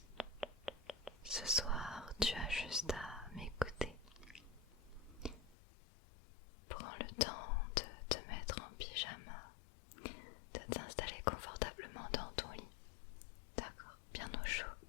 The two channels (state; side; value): drops out; right; at 5.6 s